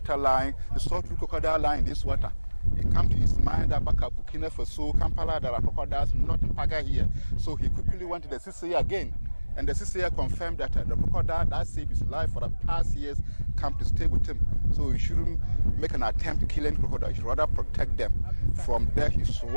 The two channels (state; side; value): inverted; both; correlation -1.00